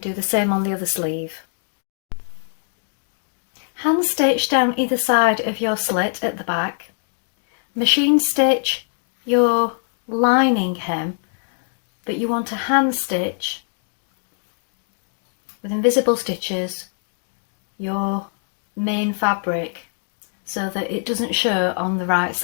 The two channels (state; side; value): silent; right; 62 dB below the other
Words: do the same on the other sleeve. Hand stitch down either side of your slit at the back. Machine stitch your lining hem that you want to hand stitch with invisible stitches your main fabric so that it doesn't show on the right